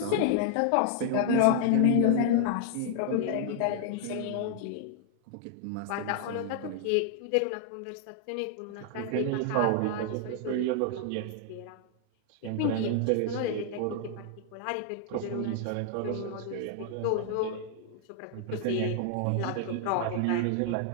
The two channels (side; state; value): both; different; correlation 0.00